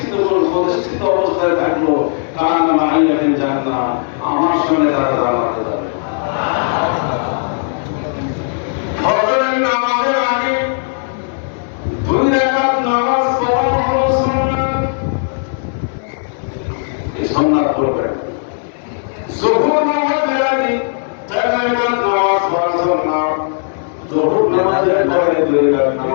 অবস্থায় থাকলো, কার নাম আইয়াকে জান না, আমার সঙ্গে তারা জানাতে যাবে। ফজরের নামাজের আগে 2 রাকাত নামাজ পড়া হলো সুন্নাত, এই সুন্নাত পড়বেন। যুহর নামাজের আগে 4 রাকাত নামাজ পড়া সুন্নাত, যুহর নামাজের পরে 2 রাকাত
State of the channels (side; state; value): right; silent; digital silence